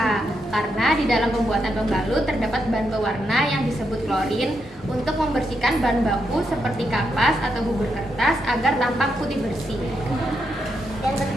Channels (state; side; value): normal; both; correlation 0.81